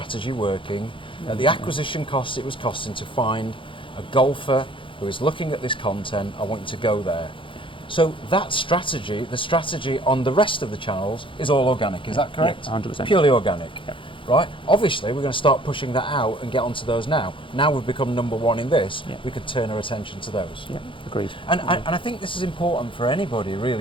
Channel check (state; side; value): late; right; 0.25 ms